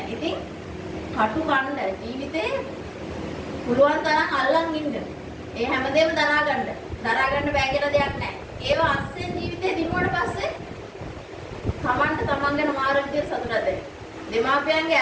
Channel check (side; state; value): both; identical; correlation 1.00